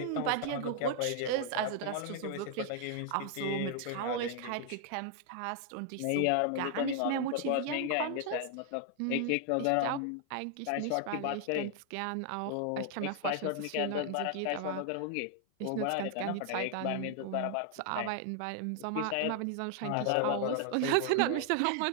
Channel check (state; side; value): different; both; correlation 0.00